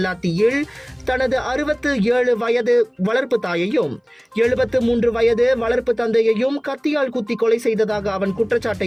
தனது 67 வயது வளர்ப்பு தாயையும் 73 வயது வளர்ப்பு தந்தையையும் கத்தியால் குத்தி கொலை செய்ததாக அவன்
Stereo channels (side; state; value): both; identical; correlation 1.00